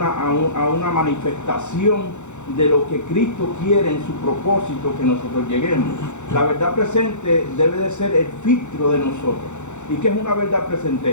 manifestación de lo que Cristo quiere en su propósito que nosotros lleguemos. La verdad presente debe de ser el filtro de nosotros. ¿Y qué es una verdad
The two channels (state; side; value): late; right; 0.84 ms